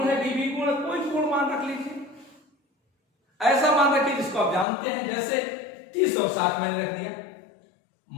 है बी भी पूर्ण है, कोई पूर्ण मान रख लीजिए, ऐसा मान रखिए जिसको आप जानते हैं, जैसे 30 और 60 मैंने रख दिया।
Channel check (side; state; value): right; drops out; at 4.7 s